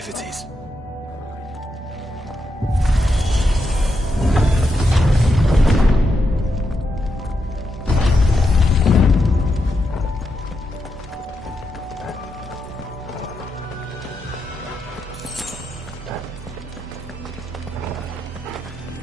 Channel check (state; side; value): normal; both; correlation 0.84